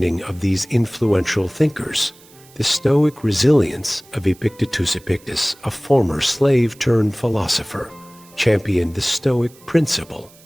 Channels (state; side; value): noise; right; hiss, 25 dB below the sound